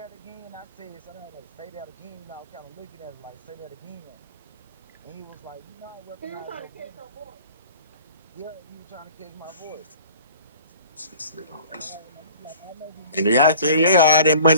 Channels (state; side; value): inverted; both; correlation -0.47